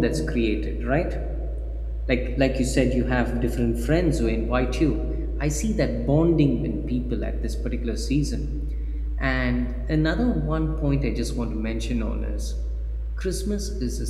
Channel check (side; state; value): both; identical; correlation 1.00